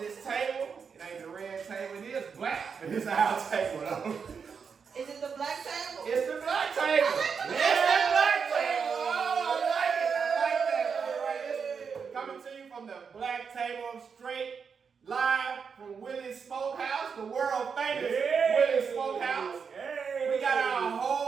table. It ain't the red table, it is black. But it's our table though. Is it the black table? It's the black table. It's the black table. Oh, I like that. All right, coming to you from the black table, straight live from Willie's Smokehouse, the world famous Willie's Smokehouse. We got our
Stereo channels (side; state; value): left; quieter; 6.1 dB